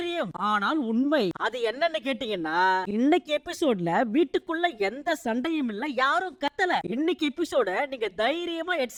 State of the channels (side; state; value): both; identical; correlation 1.00